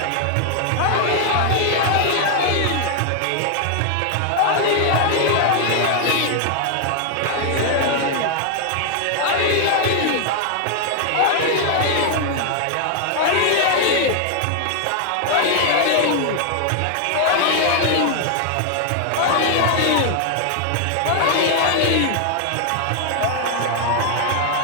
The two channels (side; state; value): both; different; correlation 0.00